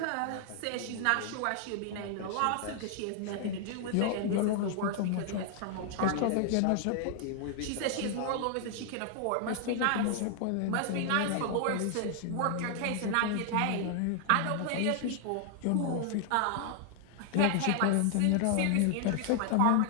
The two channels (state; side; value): different; both; correlation 0.00